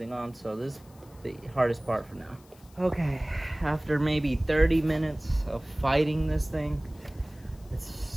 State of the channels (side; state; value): left; noise; hiss, 27 dB below the sound